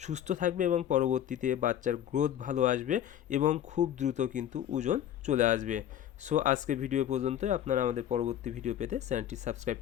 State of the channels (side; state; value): right; quieter; 10.8 dB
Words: সুস্থ থাকবে এবং পরবর্তীতে বাচ্চার গ্রোথ ভালো আসবে এবং খুব দ্রুত কিন্তু ওজন চলে আসবে। সো আজকে ভিডিও পর্যন্ত। আপনারা আমাদের পরবর্তী ভিডিও পেতে চ্যানেলটি সাবস্ক্রাইব